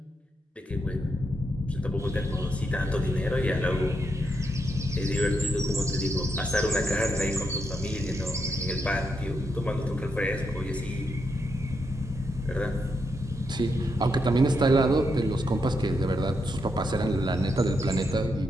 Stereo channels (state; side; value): normal; both; correlation 0.81